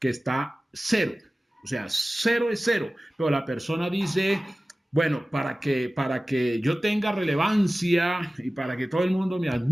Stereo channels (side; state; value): both; normal; correlation 0.97